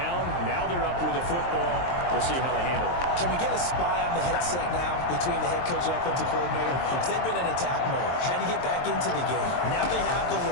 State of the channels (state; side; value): late; right; 23 ms